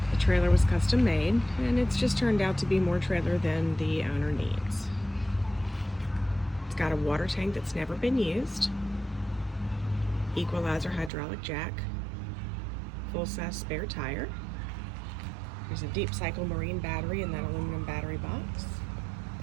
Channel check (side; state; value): left; drops out; at 11.1 s